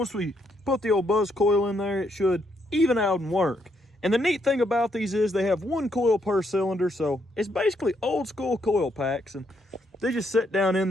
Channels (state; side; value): normal; both; correlation 0.75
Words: we put the old buzz coil in there, it should even out and work. And the neat thing about these is they have one coil per cylinder, so it's basically old school coil packs, and they just sit down in